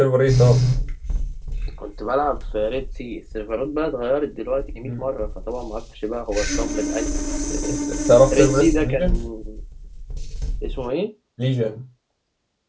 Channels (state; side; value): identical; both; correlation 1.00